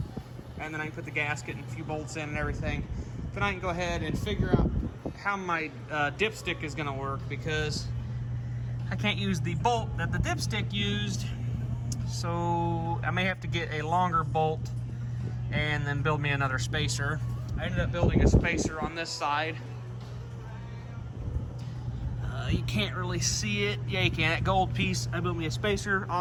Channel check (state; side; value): identical; both; correlation 1.00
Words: and then I can put the gasket and a few bolts in and everything. Then I can go ahead and figure out how my dipstick is going to work, because I can't use the bolt that the dipstick used, so I may have to get a longer bolt and then build me another spacer. I ended up building a spacer on this side. You can't really see it. Yeah, you can. That gold piece, I built me a spacer